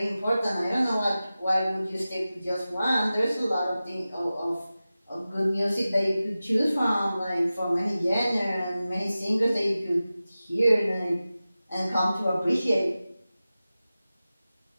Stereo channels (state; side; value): inverted; both; correlation -0.95